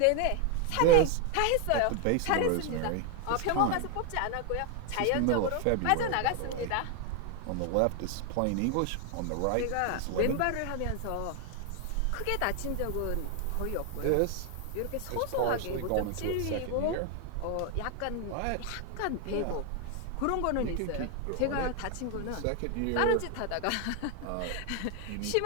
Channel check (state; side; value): different; both; correlation 0.01